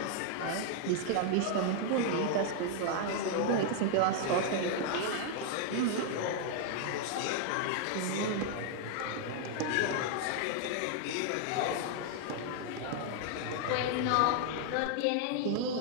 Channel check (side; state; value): both; different; correlation 0.00